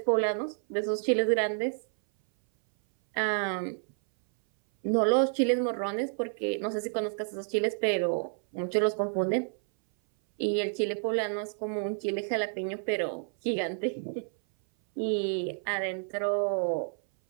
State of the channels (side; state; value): left; silent; 58 dB below the other